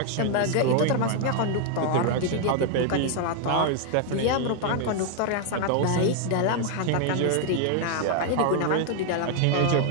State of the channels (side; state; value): both; different; correlation 0.00